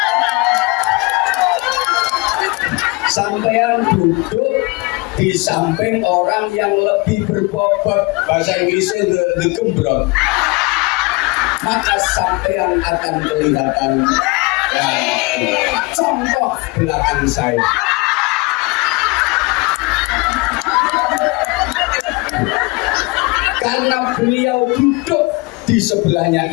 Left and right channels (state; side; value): quieter; right; 25.8 dB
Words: Sampean duduk di samping orang yang lebih berbobot, bahasa Inggrisnya the gembrong, maka sampean akan kelihatan. Contoh belakang saya, karena beliau duduk di sebelahnya